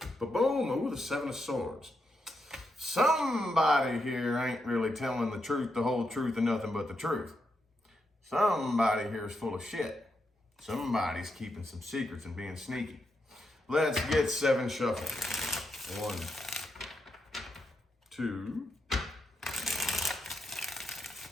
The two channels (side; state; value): both; normal; correlation 0.83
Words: Ba-boom! Ooh, the Seven of Swords. Somebody here ain't really telling the truth, the whole truth, and nothing but the truth. Somebody here is full of shit. Somebody's keeping some secrets and being sneaky. Let's get 7 shuffled. 1, 2,